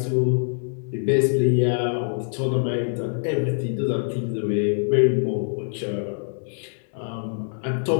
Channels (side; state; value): right; silent; digital silence